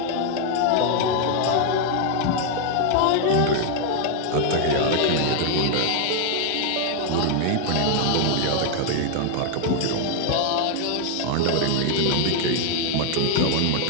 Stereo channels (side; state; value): both; different; correlation 0.00